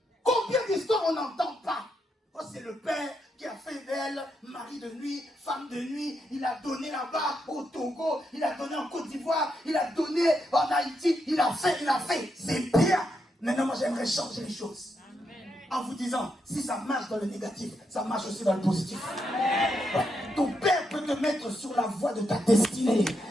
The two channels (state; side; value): normal; both; correlation 0.81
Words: combien d'histoires on n'entend pas? Oh, c'est le Père qui a fait d'elle mari de nuit, femme de nuit. Il a donné là-bas au Togo, il a donné en Côte d'Ivoire, il a donné en Haïti, il a fait. C'est bien. Maintenant, moi, j'aimerais changer les choses. En vous disant, si ça marche dans le négatif, ça marche aussi dans le positif. Ouais. Ton Père peut te mettre sur la voie de ta destinée.